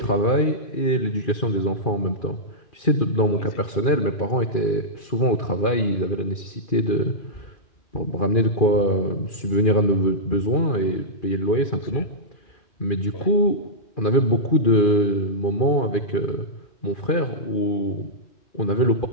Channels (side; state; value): right; late; 2.4 ms